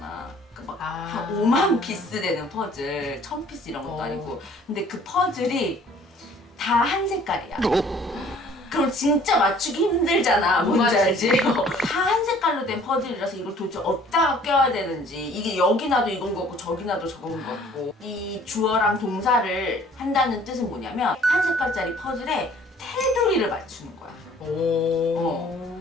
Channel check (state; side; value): normal; both; correlation 0.55